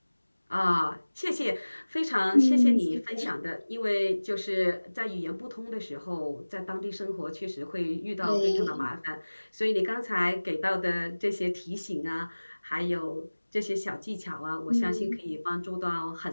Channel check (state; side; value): inverted; both; correlation -1.00